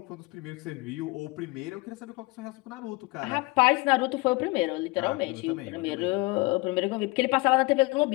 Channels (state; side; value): quieter; right; 24.1 dB